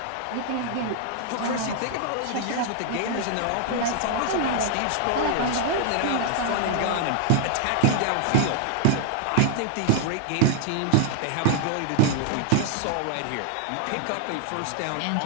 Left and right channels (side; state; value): both; different; correlation 0.00